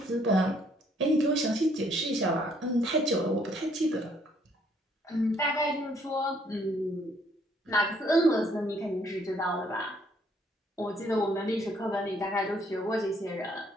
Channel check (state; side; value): normal; both; correlation 0.66